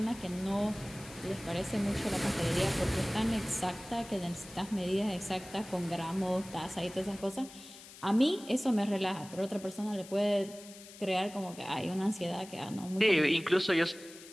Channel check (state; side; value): noise; left; hiss, 17 dB below the sound